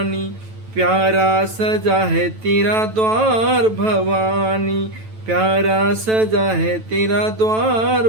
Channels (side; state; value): left; late; 9.1 ms